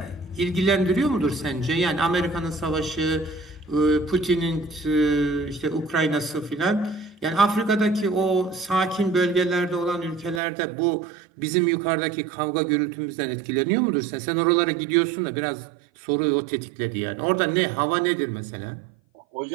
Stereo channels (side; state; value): left; drops out; at 10.4 s